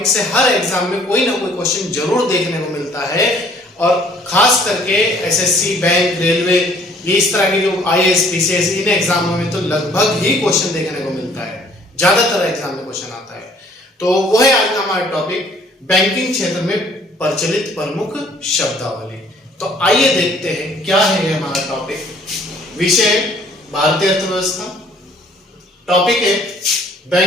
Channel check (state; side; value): normal; both; correlation 0.58